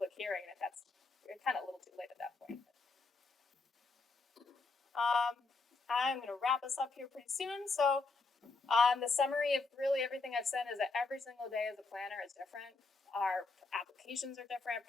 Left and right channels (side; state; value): right; quieter; 3.9 dB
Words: hearing, and that's kind of a little too late at that point. I'm going to wrap us up here pretty soon. So the summary of really everything I've said is that every single day as a planner is different. Our applications are different,